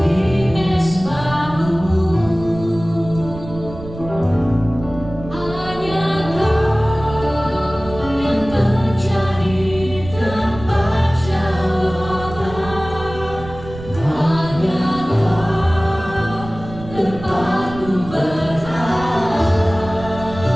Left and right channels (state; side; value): noise; right; rumble, 13 dB below the sound